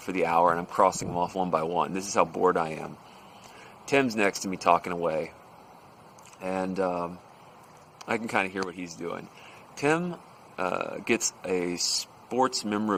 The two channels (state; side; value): identical; both; correlation 1.00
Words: the hour, and I'm crossing them off one by one. This is how bored I am. Tim's next to me talking away, and I can kind of hear what he's doing. Tim gets a sports